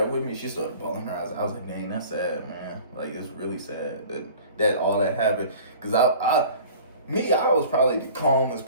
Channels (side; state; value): both; inverted; correlation -0.45